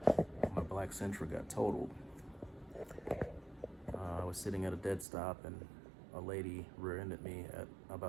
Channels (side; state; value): left; drops out; at 5.1 s